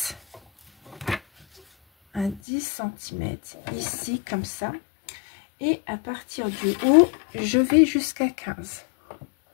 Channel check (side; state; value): right; drops out; at 2.4 s